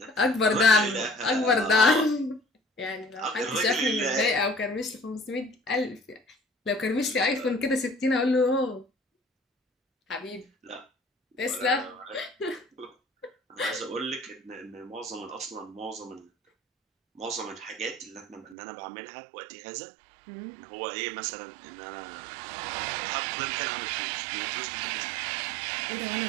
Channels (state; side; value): drops out; left; at 18.6 s